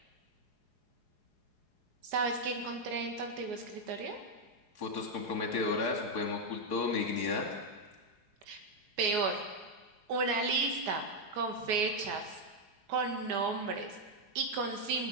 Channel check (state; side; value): late; left; 4.8 ms